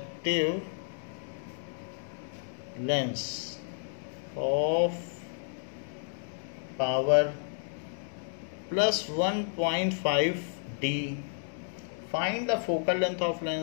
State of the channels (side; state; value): right; silent; digital silence